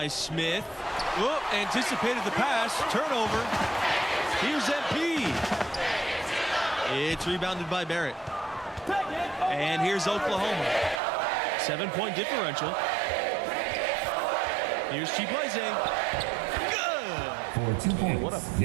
Smith. Whoop, anticipated the pass. Turnover. Here's MP. It's rebounded by Barrett. And here's Oklahoma. 7-point differential. Here's Chibueze. Good. For 2 points. What a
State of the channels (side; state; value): left; drops out; at 11.0 s